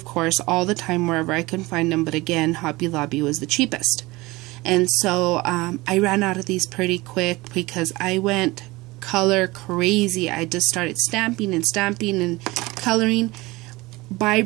course, all the time wherever I can find them, but again, Hobby Lobby was the cheapest. And so I ran out of these pretty quick because I went color crazy. I just started stamping and coloring. Buy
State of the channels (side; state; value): left; quieter; 21.5 dB